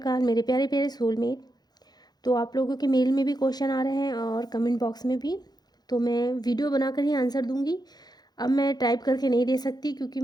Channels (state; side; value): late; right; 0.19 ms